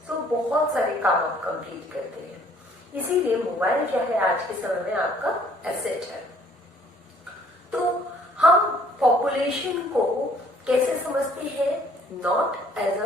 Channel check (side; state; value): both; normal; correlation 0.59